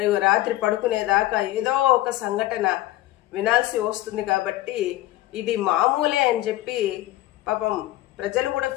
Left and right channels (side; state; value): right; quieter; 16.2 dB